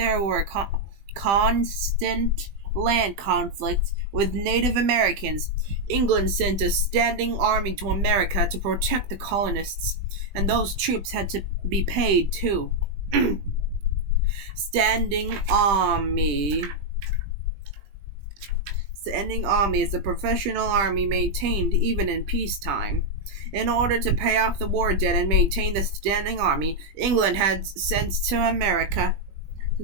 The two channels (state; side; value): late; left; 20 ms